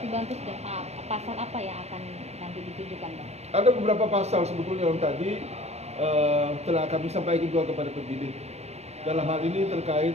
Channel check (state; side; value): late; left; 0.31 ms